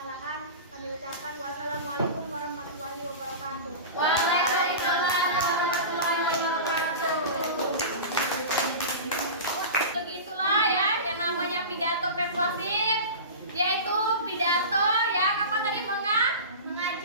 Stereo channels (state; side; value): inverted; both; correlation -0.30